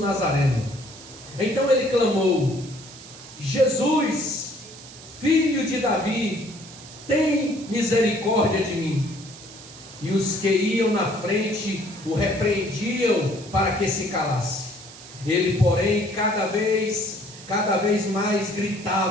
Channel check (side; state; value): right; noise; hiss, 17 dB below the sound